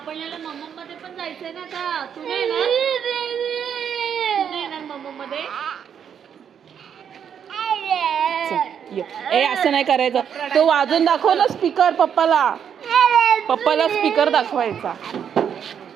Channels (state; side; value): quieter; left; 8.2 dB